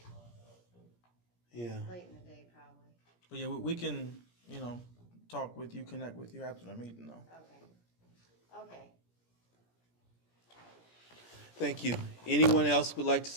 Yeah. late in the day probably. But yeah, we can, talk with you, connect with you after the meeting though. Okay. Okay. Thank you. Anyone else would like to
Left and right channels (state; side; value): late; right; 17 ms